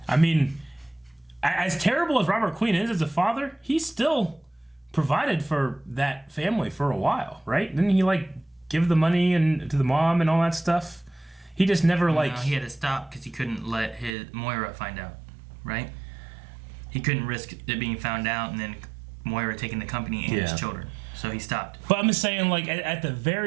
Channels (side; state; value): left; drops out; at 14.1 s